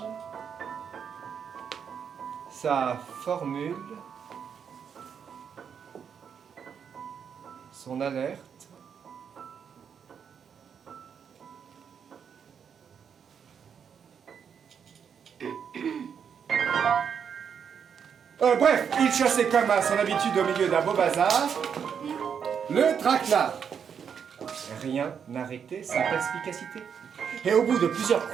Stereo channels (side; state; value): left; quieter; 7.3 dB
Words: sa formule, son alerte. Bref, il chassait comme à son habitude au milieu d'un beau bazar le traquenard. Rien n'arrêtait sa perspicacité. Et au bout de plusieurs